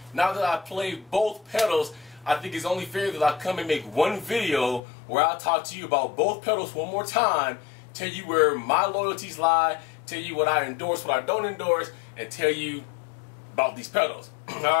Now that I played both pedals, I think it's only fair that I come and make one video where I'll talk to you about both pedals one more time, tell you where my loyalties lie, tell you what I endorse, what I don't endorse, and tell you about these pedals.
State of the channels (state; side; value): drops out; right; at 4.8 s